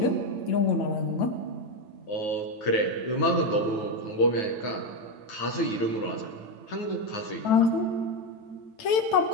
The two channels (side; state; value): right; late; 9.1 ms